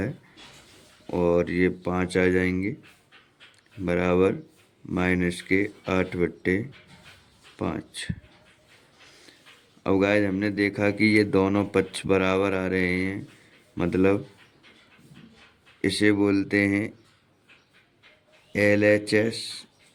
और ये 5 आ जाएंगे बराबर माइनस के 8/5। अब गाइस हमने देखा कि ये दोनों पक्ष बराबर आ रहे हैं, मतलब इसे बोलते हैं LHS,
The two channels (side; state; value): both; identical; correlation 1.00